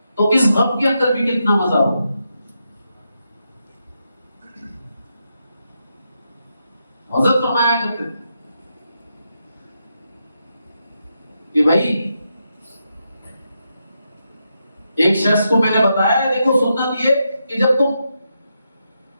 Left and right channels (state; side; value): inverted; both; correlation -0.84